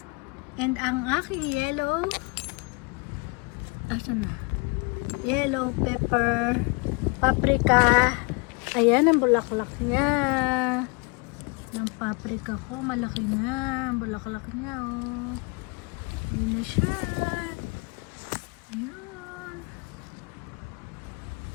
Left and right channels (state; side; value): quieter; right; 30.4 dB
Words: And ang aking yellow, asan na? Yellow pepper, paprika. Ayan ang bulaklak niya. Ng paprika ko, malaki na ang bulaklak niya, oh. Yun na siya. Ayun.